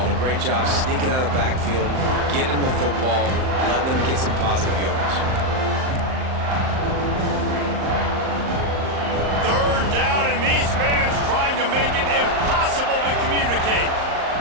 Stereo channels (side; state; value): left; late; 38 ms